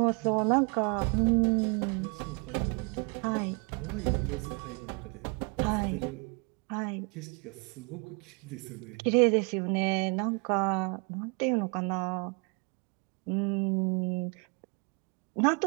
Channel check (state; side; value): quieter; left; 33.9 dB